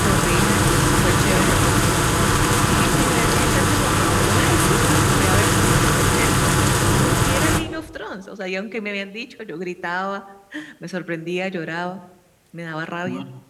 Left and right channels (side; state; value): both; identical; correlation 1.00